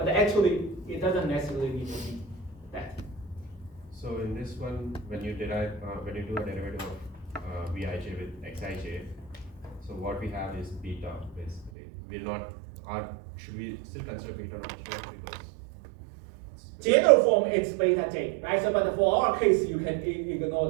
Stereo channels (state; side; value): drops out; left; at 11.7 s